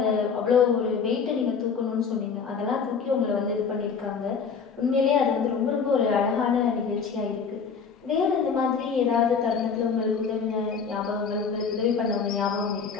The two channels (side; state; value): right; quieter; 5.9 dB